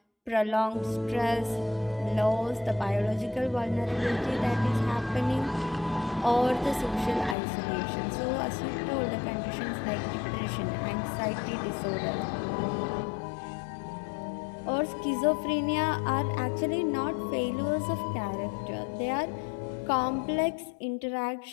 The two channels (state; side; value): drops out; right; at 7.4 s